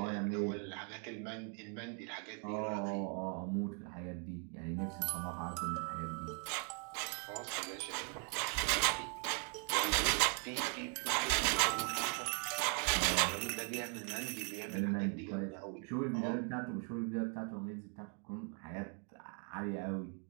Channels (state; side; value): quieter; left; 39.4 dB